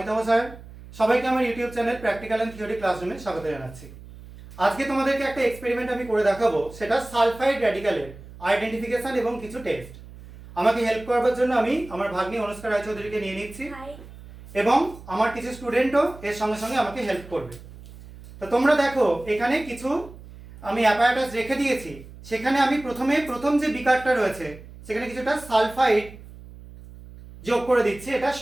স্যার। সবাইকে আমার YouTube channel practical and theory ক্লাসরুমে স্বাগত জানাচ্ছি। আজকে তোমাদেরকে একটা এক্সপেরিমেন্ট আমি করে দেখাবো, সেটা সালফাইড র্যাডিক্যালের আইডেন্টিফিকেশন এবং কিছু টেস্ট। আমাকে হেল্প করবার জন্য আমি আমার ভাগ্নি অনুষ্কা রায়চৌধুরীকে নিয়ে নিচ্ছি এবং আমার কিছু স্টুডেন্টও এর সঙ্গে সঙ্গে আমাকে হেল্প করবে। তো তোমরা দেখো, এখানে কিছু আমি অ্যাপারেটাস রেখে দিয়েছি। সেখানে আমি প্রথম যে বিকারটা রয়েছে সেখানে কিছুটা সালফাইড যোগ করে দিচ্ছি। এটা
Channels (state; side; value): noise; right; hum, 17 dB below the sound